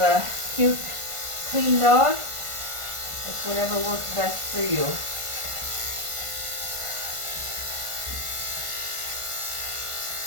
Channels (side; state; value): left; late; 1.5 ms